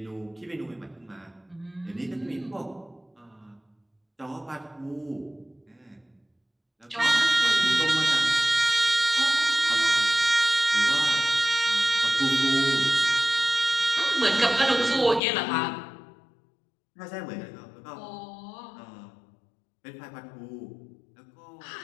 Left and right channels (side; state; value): right; drops out; at 15.2 s